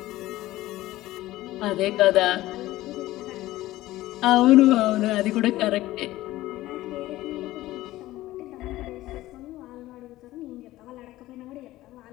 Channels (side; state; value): right; quieter; 16.4 dB